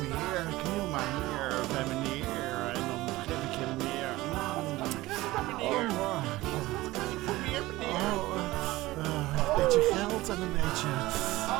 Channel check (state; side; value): quieter; left; 18.5 dB